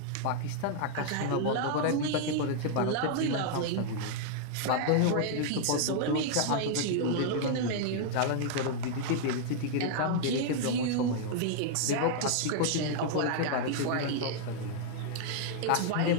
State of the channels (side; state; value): both; different; correlation -0.01